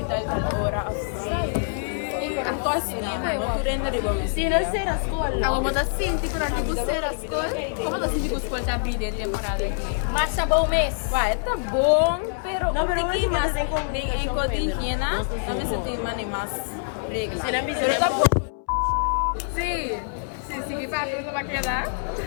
tal hora, Anto assim, não tu renda de bom assim. Ela bota cinco para tipo ser a escola como você tipo escola tá abrindo temporada Marcha bom mês. Vai, tá bom, pero um pouquinho mais em cor de higiene, também se tem mais regras. Pero tá bom. sim que vai para quedar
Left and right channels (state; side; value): silent; right; 62 dB below the other